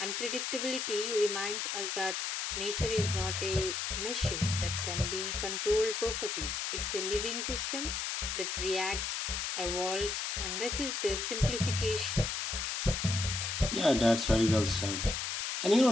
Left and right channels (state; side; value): noise; left; hiss, 2 dB below the sound